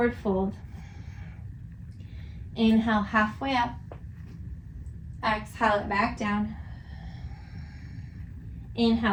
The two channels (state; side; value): identical; both; correlation 1.00